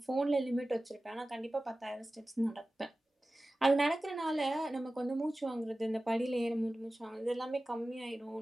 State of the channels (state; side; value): normal; both; correlation 0.96